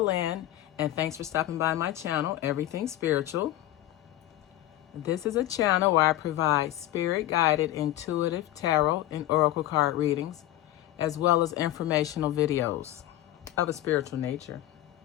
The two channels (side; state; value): right; quieter; 14.4 dB